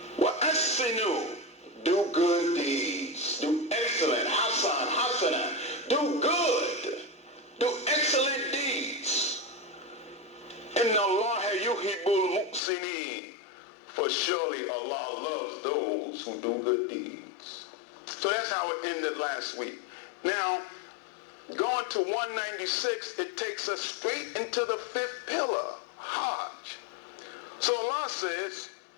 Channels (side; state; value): right; drops out; at 12.6 s